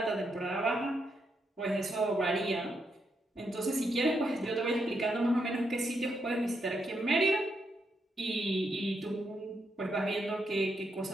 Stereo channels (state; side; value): normal; both; correlation 0.80